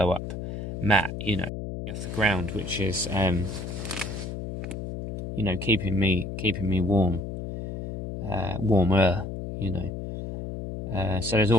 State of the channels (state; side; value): noise; left; hum, 6 dB below the sound